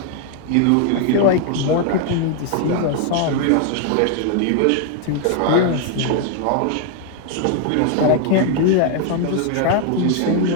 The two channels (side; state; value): both; different; correlation 0.00